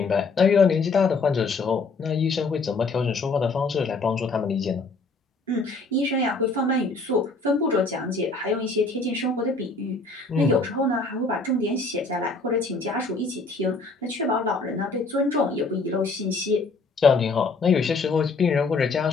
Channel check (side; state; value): right; quieter; 3.8 dB